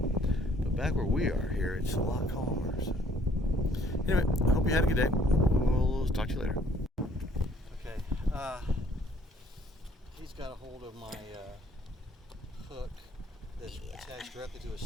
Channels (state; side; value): normal; both; correlation 0.61